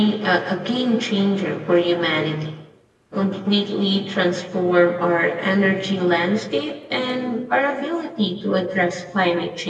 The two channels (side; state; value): both; identical; correlation 1.00